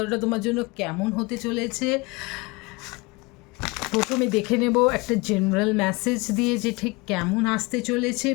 তোমার জন্য কেমন হতে চলেছে। প্রথমে দেখে নেব একটা জেনারেল মেসেজ দিয়ে যে ঠিক কেমন আসতে চলেছে।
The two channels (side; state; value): right; quieter; 25.6 dB